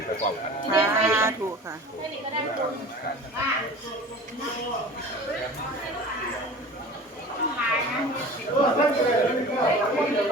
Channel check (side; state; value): both; normal; correlation 0.39